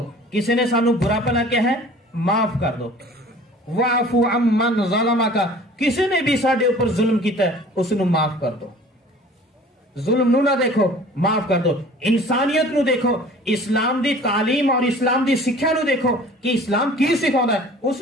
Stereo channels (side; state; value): both; normal; correlation 0.47